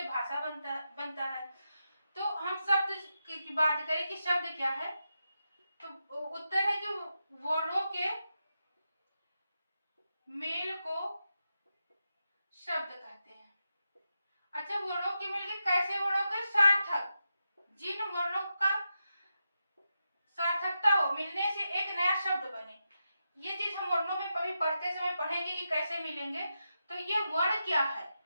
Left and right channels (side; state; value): both; inverted; correlation -0.88